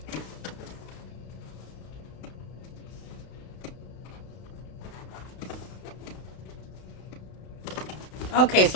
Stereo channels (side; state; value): right; late; 32 ms